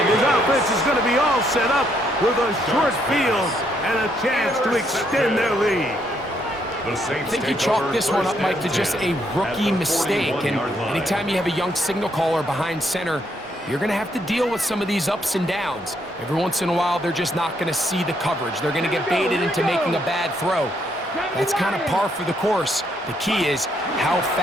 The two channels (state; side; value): normal; both; correlation 0.73